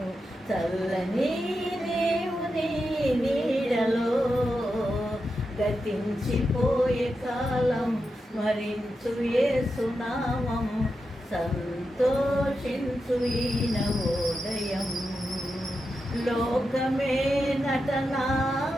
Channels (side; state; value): both; normal; correlation 0.88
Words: చల్లని దేవుని నీడలో గతించిపోయే కాలం స్మరించు యేసునామం సంతోషించు ఈ నవోదయం. లోకమే